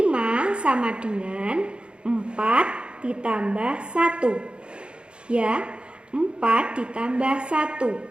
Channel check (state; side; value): late; left; 0.055 ms